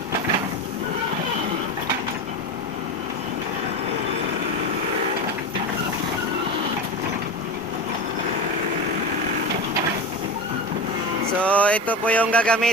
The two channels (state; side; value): normal; both; correlation 0.23